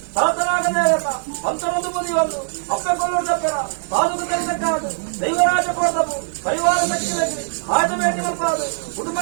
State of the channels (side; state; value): left; silent; digital silence